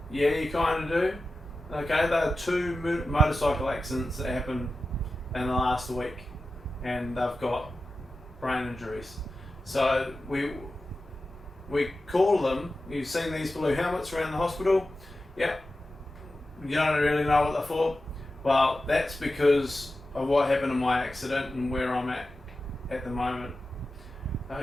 Yeah, you kind of do. Okay, there are two motorcycle accidents that happened in the last week, and they've got brain injuries. So we call them. You've seen these blue helmets around the hospital. Yep. You don't really know what they're for. Well, that's because of what happened in my accident and where I'm at the moment.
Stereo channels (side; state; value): both; normal; correlation 0.93